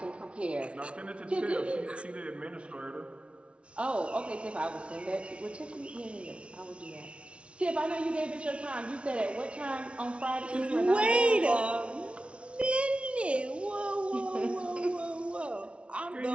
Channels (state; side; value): late; left; 0.060 ms